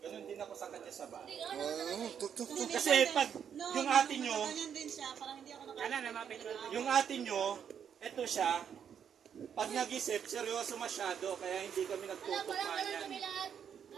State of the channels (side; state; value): left; quieter; 8.1 dB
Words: Ganun din ako sa kanya sa bahay. Kasi pag yung ate nyo, yung ate nyo, eto siya, pag nag-isip, seryoso masyado, kaya hindi kami nagtutugma yan.